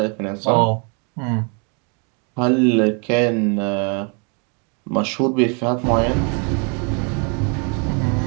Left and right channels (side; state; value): left; quieter; 35.8 dB